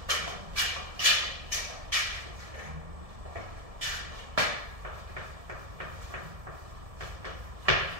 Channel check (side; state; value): left; late; 1.7 ms